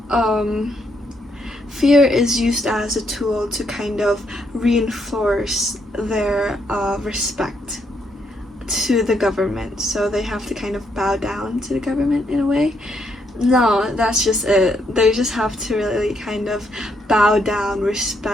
fear is used as a tool to kind of reinforce their respect to the government. So they have to kind of bow down to the government in a way. No, that's just it. They just have to really kind of bow down,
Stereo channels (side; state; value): both; normal; correlation 0.75